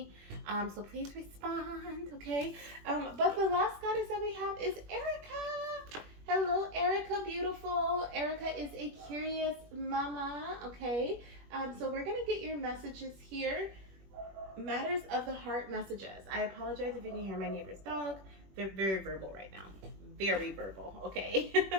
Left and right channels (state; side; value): late; left; 21 ms